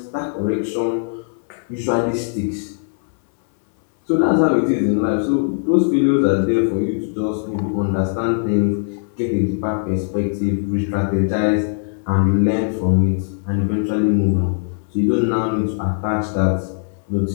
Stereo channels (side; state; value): right; silent; 66 dB below the other